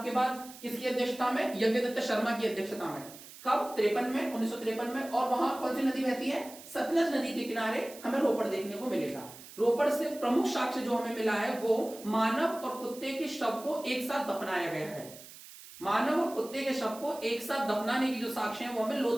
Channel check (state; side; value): noise; right; hiss, 17 dB below the sound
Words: के बाद किसकी अध्यक्षता में? यज्ञदत्त शर्मा की अध्यक्षता में। कब? 53 में, 1953 में। और वहां कौन सी नदी बहती है? सतलज नदी के किनारे हमें रोपड़ देखने को मिलेगा। रोपड़ से प्रमुख साक्ष्य जो हमें मिला है वो मानव और कुत्ते के शव को एक साथ दफनाया गया है। मानव और कुत्ते के शव को एक साथ दफनाने की जो साक्ष्य है वो हमें